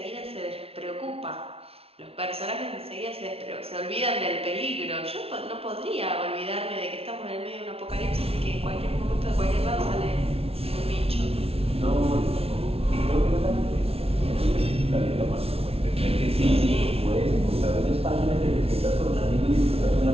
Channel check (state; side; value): late; left; 0.29 ms